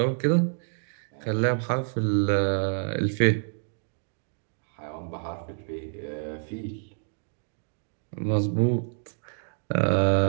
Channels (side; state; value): left; silent; digital silence